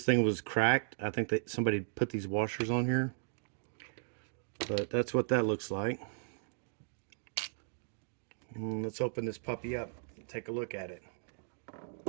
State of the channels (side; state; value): left; silent; digital silence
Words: thing was cracked, I think that somebody put these washers on here. But that's what that looks like. Let's open this puppy up and take a look at it.